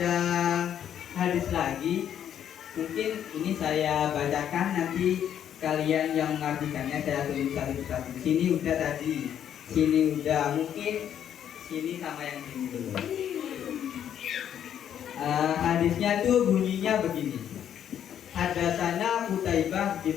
hadis lagi, mungkin ini saya bacakan, nanti kalian yang mengartikannya saya tulis satu-satu. Sini udah tadi, sini udah, mungkin sini sama yang sini dulu. Hadisnya tuh bunyinya begini. Hadatsana Qutaibah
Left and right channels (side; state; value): right; quieter; 9.7 dB